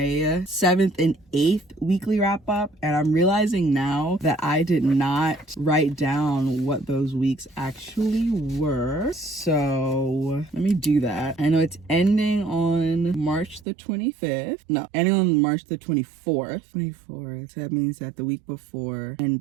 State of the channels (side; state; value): left; drops out; at 13.7 s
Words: 7th and 8th weekly wrap up, and I'm realizing now that I did not write down what those weeks actually were. So let me do that. I know it's ending on March the 25th. No, ending on March the 24th. So that means that the week before